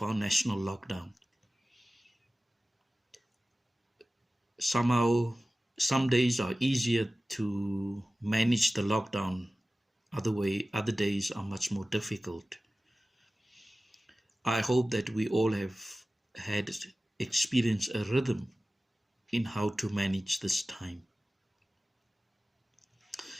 our national lockdown. Somehow, some days are easier to manage the lockdown. Other days are much more difficult. I hope that we all have had experienced a rhythm in how to manage this time.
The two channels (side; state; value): both; normal; correlation 0.96